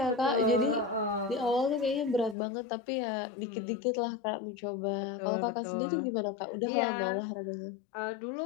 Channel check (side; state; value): right; drops out; at 2.4 s